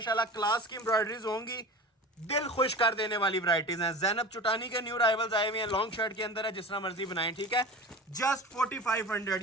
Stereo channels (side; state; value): both; normal; correlation 0.33